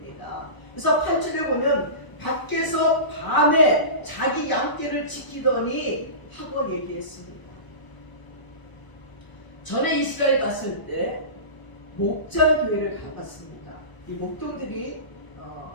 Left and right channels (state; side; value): late; right; 1.0 ms